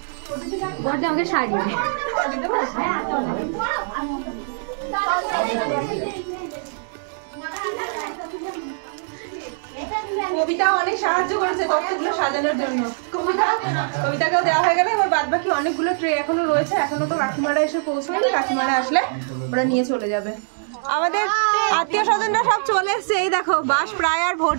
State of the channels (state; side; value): silent; left; 64 dB below the other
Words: আমাকে শাড়ি কবিতা অনেক সাহায্য করেছে তত্ত্বগুলো সাজানোর জন্য। কবিতাকেও দেওয়া হয়ে গেল। এবার বাদ বাকি অনেকগুলো ট্রে এখনো রয়েছে, এখনো তো কাকিমারা এসে পৌঁছায়নি। কাকিমারা আসলে ওরা নিয়ে চলে যাবে। আমাদের আত্মীয় স্বজনরা সব চলে এসছে। এই দেখো বাস প্রায় আর